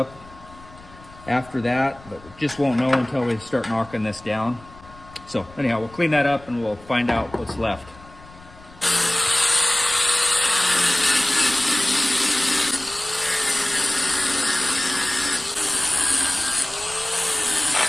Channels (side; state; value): left; noise; rumble, 22 dB below the sound